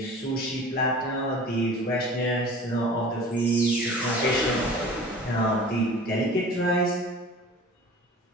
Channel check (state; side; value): normal; both; correlation 0.42